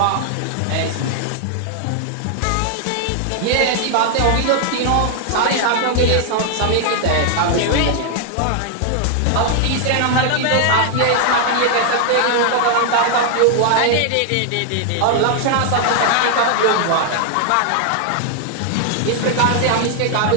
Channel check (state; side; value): different; both; correlation 0.00